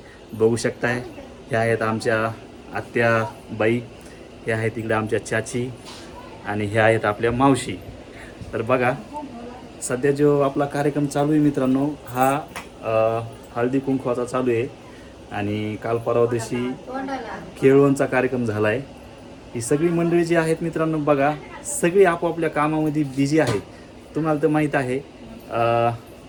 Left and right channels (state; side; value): identical; both; correlation 1.00